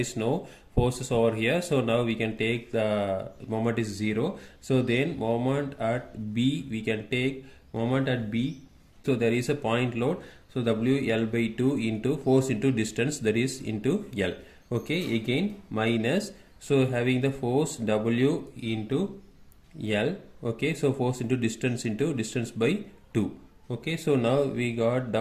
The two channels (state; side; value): identical; both; correlation 1.00